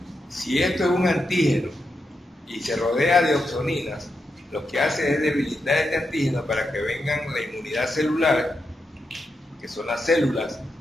Si esto es un antígeno y se rodea de opsoninas, lo que hace es debilitar este antígeno para que vengan la inmunidad celular, que son las células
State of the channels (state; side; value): normal; both; correlation 0.86